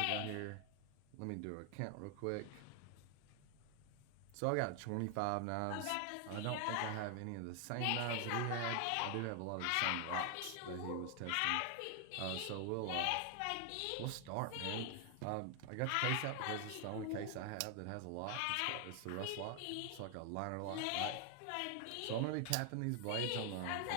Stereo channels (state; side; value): different; both; correlation 0.00